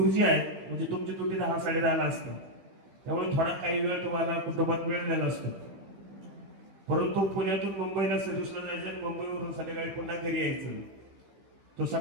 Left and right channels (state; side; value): late; left; 16 ms